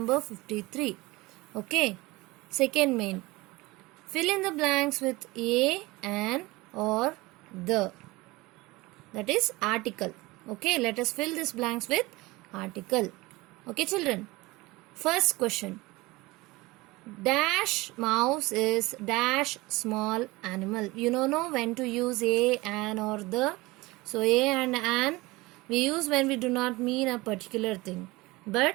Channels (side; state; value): left; quieter; 21.6 dB